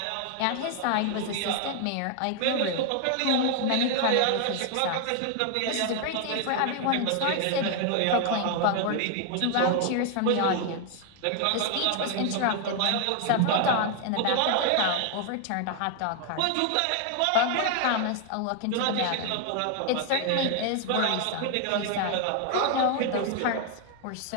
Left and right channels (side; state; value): both; different; correlation 0.00